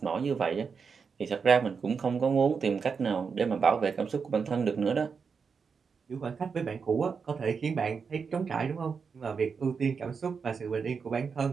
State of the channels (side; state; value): left; quieter; 5.7 dB